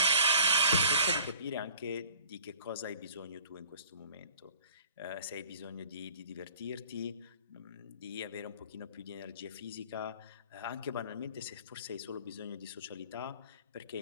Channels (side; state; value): both; inverted; correlation -0.52